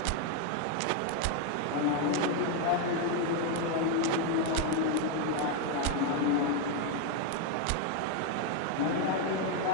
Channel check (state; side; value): different; both; correlation 0.01